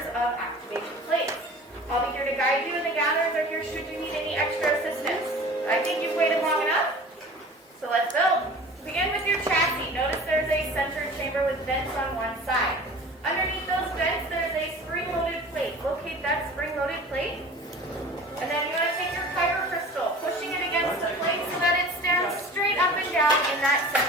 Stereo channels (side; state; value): both; normal; correlation 0.41